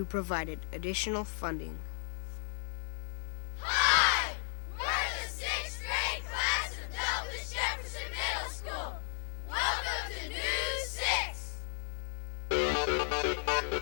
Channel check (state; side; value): silent; right; 55 dB below the other